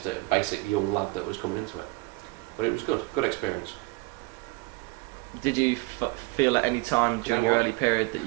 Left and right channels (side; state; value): left; quieter; 24.0 dB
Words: a basic young lad that was coming into it. But it was good experience. Did you feel at any time during your early period that